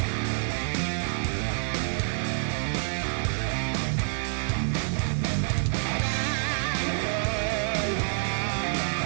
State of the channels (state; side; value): silent; left; 60 dB below the other